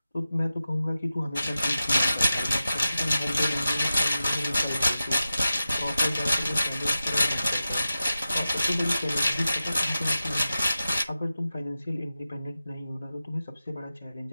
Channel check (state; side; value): inverted; both; correlation -0.93